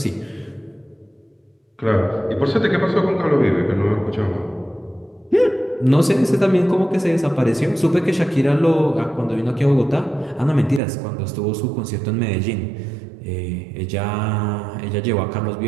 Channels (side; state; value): left; drops out; at 10.8 s